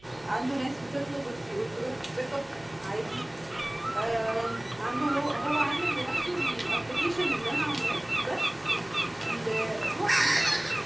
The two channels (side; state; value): right; noise; hum, 25 dB below the sound